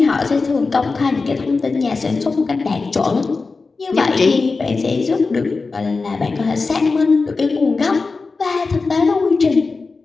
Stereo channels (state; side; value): quieter; right; 4.1 dB